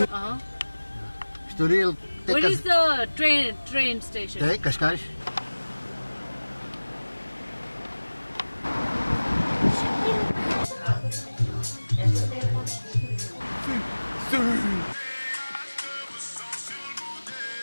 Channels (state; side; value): inverted; both; correlation -1.00